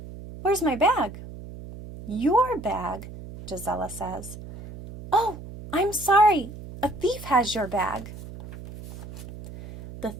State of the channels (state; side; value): noise; right; hum, 13 dB below the sound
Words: Where's my bag? Your bag, Gisela says. Oh, I'm sorry. A thief has your bag. The